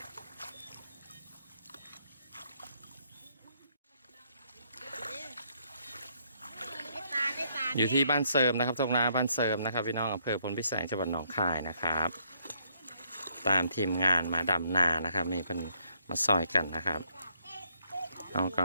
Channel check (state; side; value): inverted; both; correlation -0.71